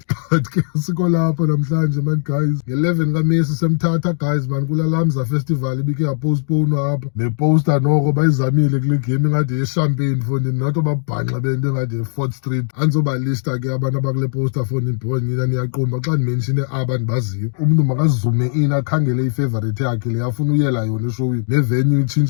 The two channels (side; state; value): right; silent; digital silence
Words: but ke siko lapha namhlanje man guys. Nge-11 kaMesi semthatha guys man kula Lamza festival ibike yapostponwa apha. Neposter noko bayizamile kule game ingade yechampagne fundi nathi babhanxa bento engade ye-4th Street. Andizobalista ke abantu abakule poster fundi ndibona nina niyaqomba xa ndimenshine aba ndibaziyo. Umntu makazume in akhangele ifavorite yakhe le afuna uyela yona eshowini. Nevenue